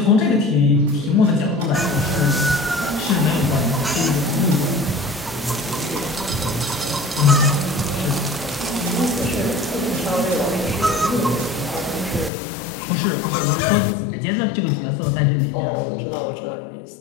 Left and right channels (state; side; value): drops out; right; at 12.3 s